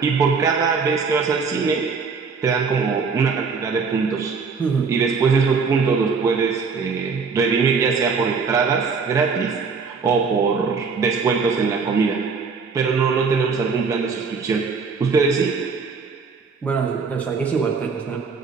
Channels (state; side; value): quieter; left; 5.1 dB